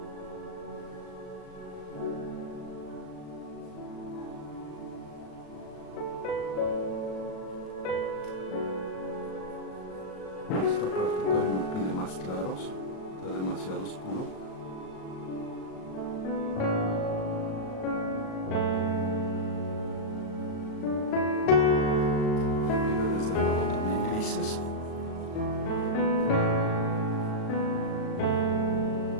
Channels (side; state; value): right; late; 37 ms